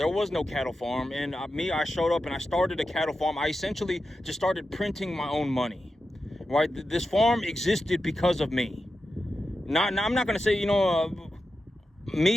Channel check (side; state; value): both; normal; correlation 0.90